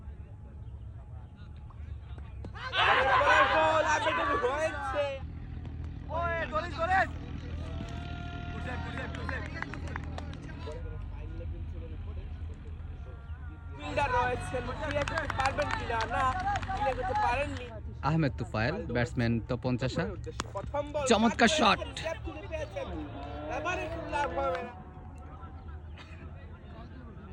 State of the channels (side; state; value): both; identical; correlation 1.00